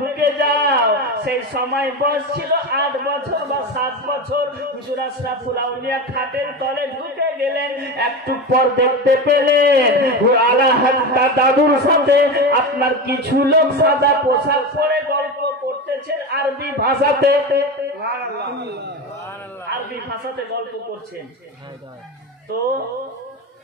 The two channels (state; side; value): normal; both; correlation 0.22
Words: যাও। সেই সময় বয়স ছিল 8 বছর বা 7 বছর। হুজুর আশরাফুল আউলিয়া খাটের তলে ঢুকে গেলেন। একটু পর দেখতে পেলেন আলা হযরত দাদুর সাথে আপনার কিছু লোক সাদা পোশাক পরে গল্প করতেছেন আরবি ভাষাতে। আরবি ভাষাতে গল্প করছেন। তো